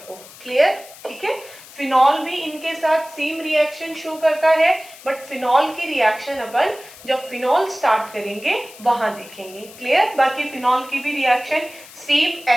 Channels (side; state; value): left; noise; hiss, 19 dB below the sound